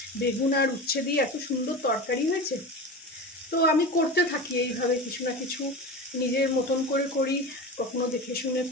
বেগুন আর উচ্ছে দিয়ে এত সুন্দর তরকারি হয়েছে। তো আমি করতে থাকি এইভাবে কিছু না কিছু, নিজের মতন করে করি, কখনো দেখে শুনে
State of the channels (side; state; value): both; normal; correlation 0.28